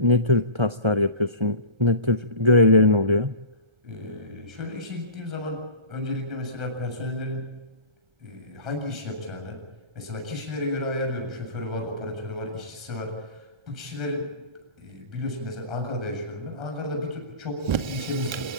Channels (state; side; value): late; left; 1.3 ms